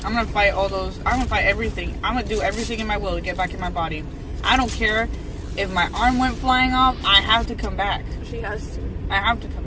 gonna fight all those. I'm gonna fight everything. I'm gonna do everything in my will to get back in my body. I don't care if my arm went flying off. I have to come back. She has to. I have to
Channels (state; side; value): identical; both; correlation 1.00